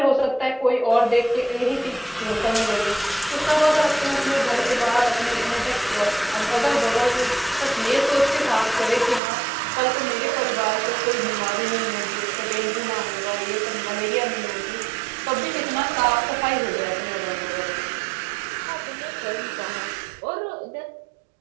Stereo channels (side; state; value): left; drops out; at 9.2 s